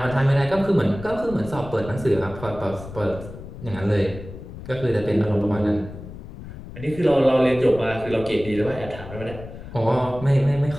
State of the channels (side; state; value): left; noise; rumble, 13 dB below the sound